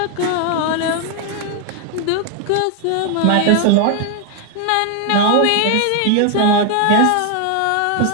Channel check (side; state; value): both; different; correlation 0.01